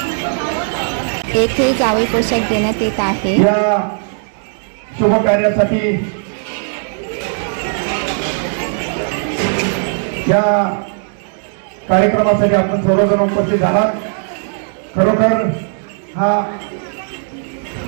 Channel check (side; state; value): left; silent; digital silence